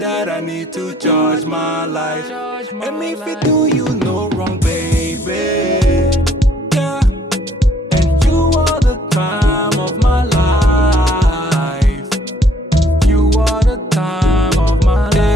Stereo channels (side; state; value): both; normal; correlation 0.63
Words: I need to charge my life. Charge my And if it life. do you no wrong, baby. Yeah. And you are the time of my life. You are the time of my